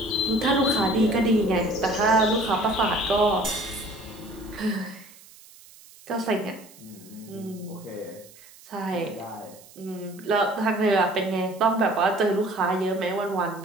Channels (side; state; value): right; noise; hiss, 23 dB below the sound